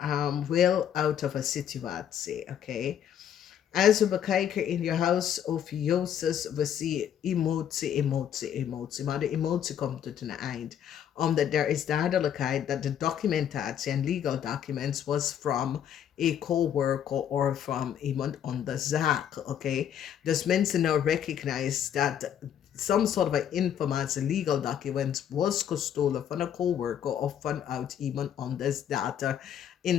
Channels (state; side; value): quieter; right; 9.5 dB